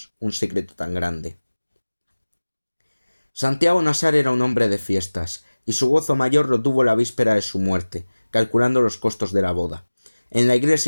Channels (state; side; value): inverted; both; correlation -1.00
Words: un secreto tan grande. Santiago Nassar era un hombre de fiestas, y su gozo mayor lo tuvo la víspera de su muerte, calculando los costos de la boda. En la